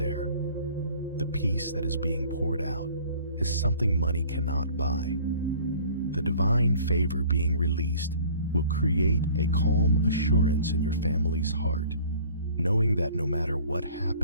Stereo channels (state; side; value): inverted; both; correlation -0.50